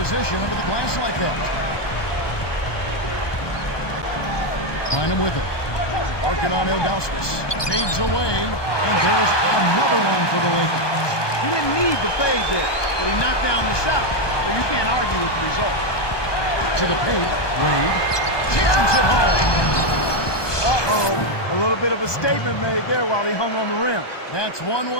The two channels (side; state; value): right; late; 1.2 ms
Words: under the glass like that. Find him with it. Working on Ilgauskas. Fades away, and there's another one for the Lakers. He didn't need the fade there, but he knocked down the shot. So you can't argue with the result. To the paint, Wade jams it home. Uh-oh. A little bit of a statement made there while he hung on the rim. That's one